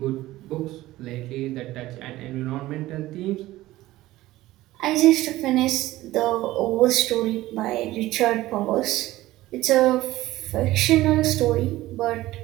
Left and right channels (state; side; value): quieter; left; 16.7 dB